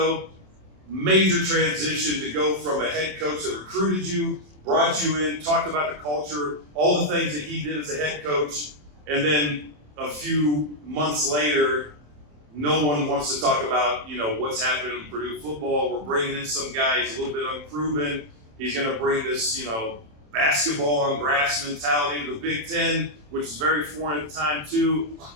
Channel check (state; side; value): late; left; 27 ms